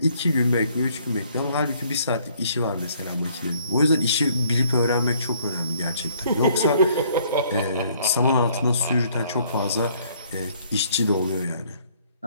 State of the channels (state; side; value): inverted; both; correlation -0.63